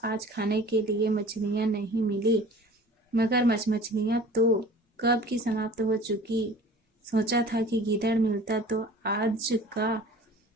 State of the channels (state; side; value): normal; both; correlation 0.44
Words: आज खाने के लिए मछलियां नहीं मिली? मगरमच्छ, मछलियां तो कब की समाप्त हो चुकी। सोचा था कि गीदड़ मिलता तो आज का